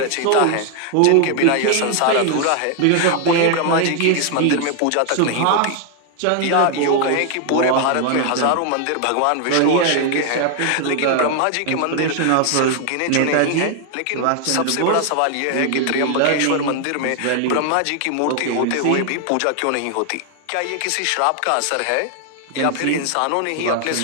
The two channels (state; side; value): different; both; correlation 0.00